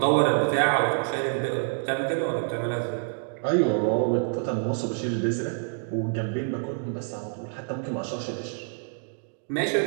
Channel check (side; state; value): left; silent; digital silence